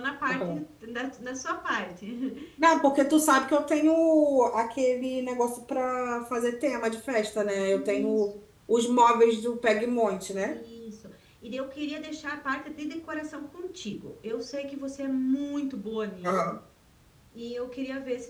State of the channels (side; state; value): both; identical; correlation 1.00